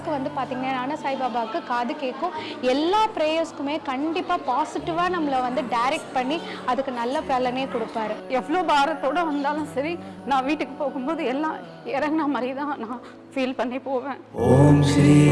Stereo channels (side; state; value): both; identical; correlation 1.00